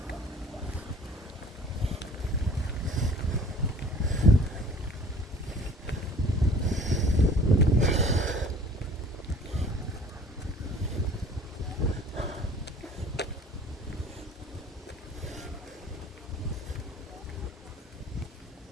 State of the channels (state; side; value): normal; both; correlation 0.50